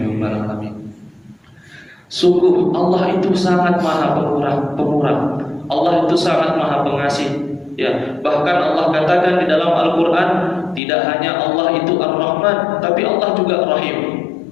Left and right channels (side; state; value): right; drops out; at 10.8 s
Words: alamin. Sungguh Allah itu sangat maha pemurah. Allah itu sangat maha pengasih. Ya, bahkan Allah katakan di dalam Al-Quran, tidak hanya Allah itu Ar-Rahman, tapi Allah juga Rahim.